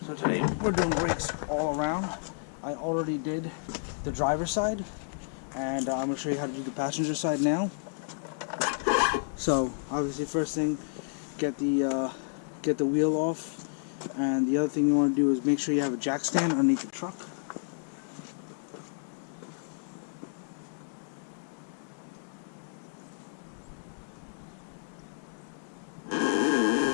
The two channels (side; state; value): right; silent; digital silence